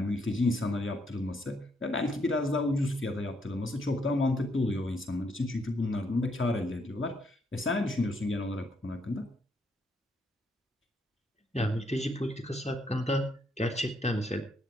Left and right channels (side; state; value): both; normal; correlation 0.74